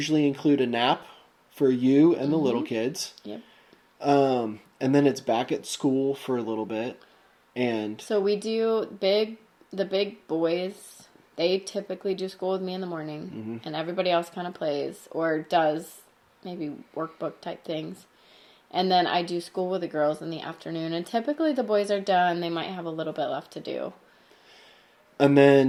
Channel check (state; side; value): identical; both; correlation 1.00